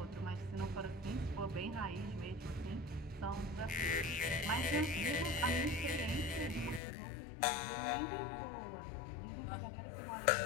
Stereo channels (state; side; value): drops out; right; at 6.8 s